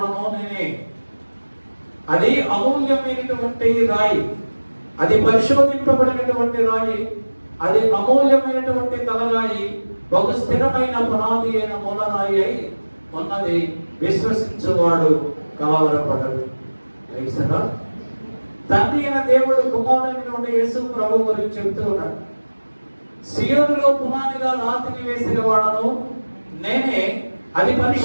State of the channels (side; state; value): both; inverted; correlation -1.00